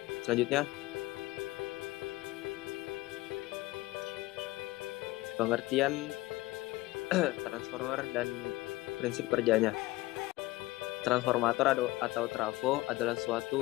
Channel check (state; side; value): quieter; right; 19.4 dB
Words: pengertian transformer dan prinsip kerjanya. Transformator atau trafo adalah